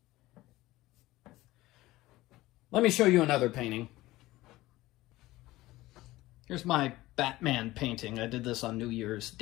Let me show you another painting. Here's my Batman painting. I did this on New Year's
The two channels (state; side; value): quieter; right; 17.8 dB